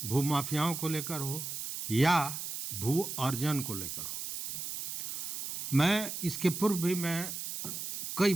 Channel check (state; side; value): noise; right; hiss, 5 dB below the sound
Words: भूमाफियाओं को लेकर हो, या भू अर्जन को लेकर हो। मैं इसके पूर्व भी कई